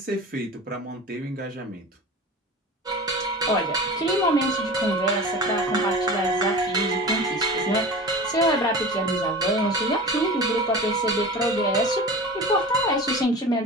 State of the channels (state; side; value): normal; both; correlation 0.34